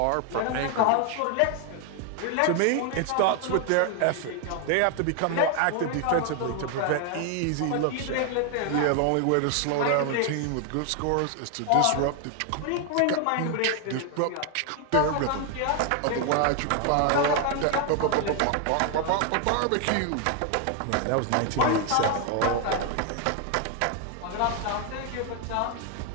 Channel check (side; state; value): both; different; correlation 0.00